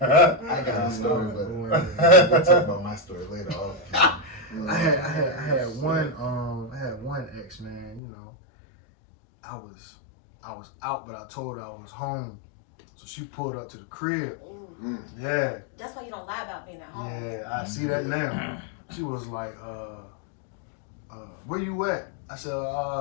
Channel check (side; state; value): right; drops out; at 8.0 s